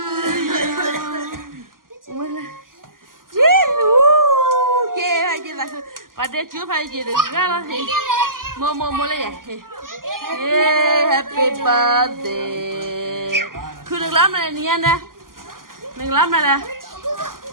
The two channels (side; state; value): left; late; 0.91 ms